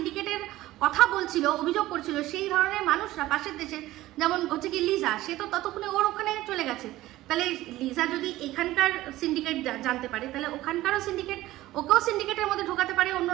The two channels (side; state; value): left; quieter; 16.3 dB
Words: কথা বলছিল, অভিযোগ করছিল, সেই ধরনের মানুষরা পাশের দেশে, যেমন হচ্ছে কি লিজা, সে তো ততক্ষণে ওর ওখানে চলে গেছে। তাহলে লিজা যদি এখানকার সিন্ডিকেট জানতে পারে, তাহলে ওখানকারও সিন্ডিকেট, ওকেও সিন্ডিকেটের মধ্যে ঢোকাতে পারে